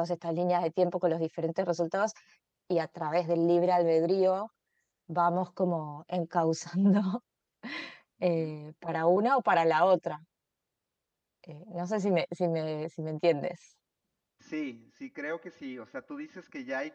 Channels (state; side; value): identical; both; correlation 1.00